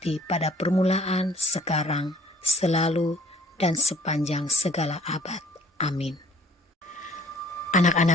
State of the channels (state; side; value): normal; both; correlation 0.57